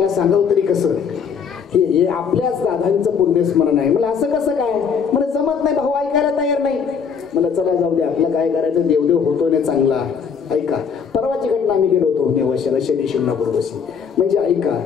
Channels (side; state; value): right; quieter; 6.5 dB